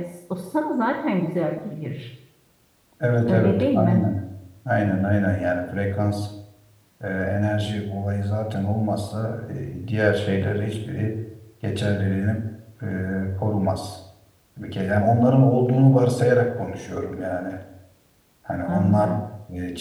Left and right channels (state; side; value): identical; both; correlation 1.00